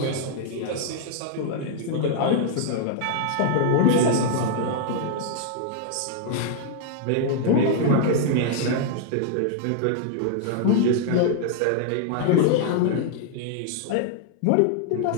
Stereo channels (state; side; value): different; both; correlation 0.00